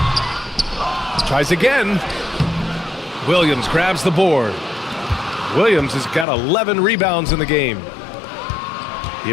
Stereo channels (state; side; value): drops out; right; at 6.2 s